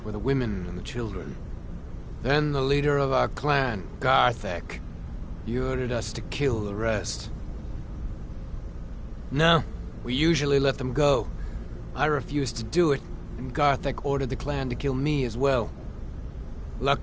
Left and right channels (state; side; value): identical; both; correlation 1.00